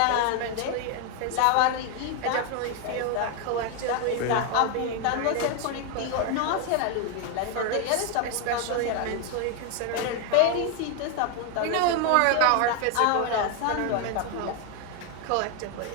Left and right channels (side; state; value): both; different; correlation 0.01